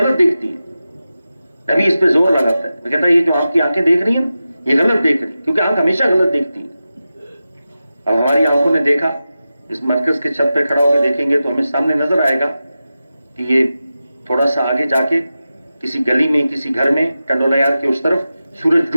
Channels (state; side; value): inverted; both; correlation -0.93